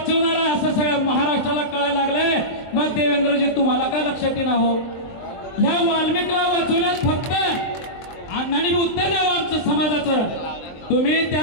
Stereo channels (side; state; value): right; late; 23 ms